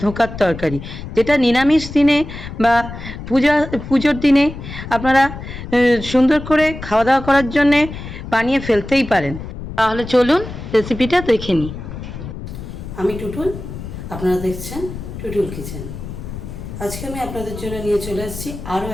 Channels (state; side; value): noise; left; rumble, 10 dB below the sound